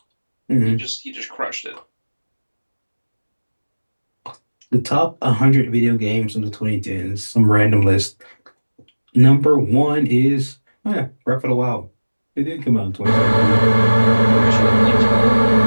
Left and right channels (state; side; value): inverted; both; correlation -1.00